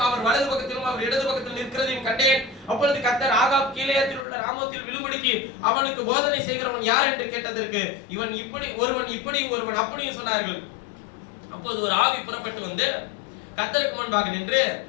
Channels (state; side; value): drops out; right; at 4.2 s